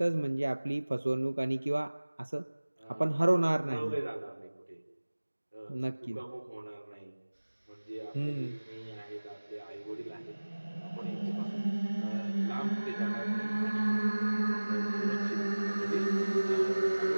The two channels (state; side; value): inverted; both; correlation -1.00